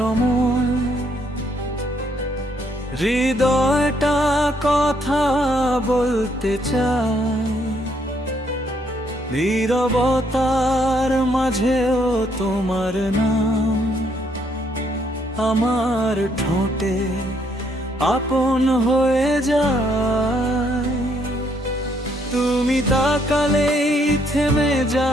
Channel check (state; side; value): normal; both; correlation 0.71